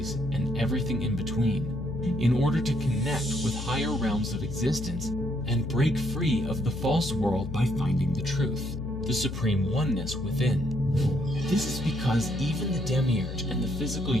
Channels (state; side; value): noise; left; hum, 7 dB below the sound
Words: and everything in between, in order to connect with higher realms of existence and break free of the false world by finding the truth, the supreme oneness within. This is because even the demiurge and the physical